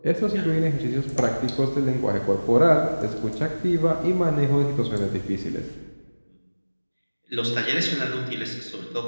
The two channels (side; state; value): both; inverted; correlation -1.00